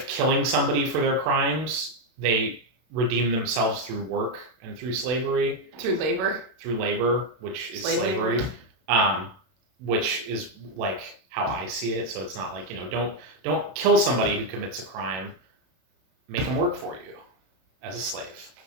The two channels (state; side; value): late; left; 32 ms